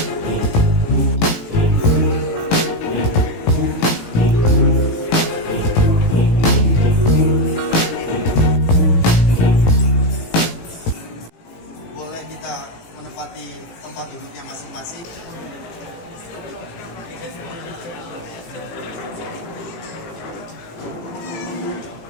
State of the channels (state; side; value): late; right; 18 ms